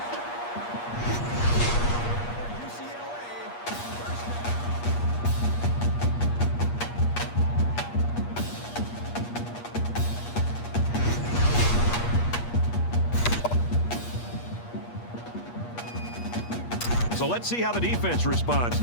So let's see how the defense responds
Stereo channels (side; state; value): right; late; 8.4 ms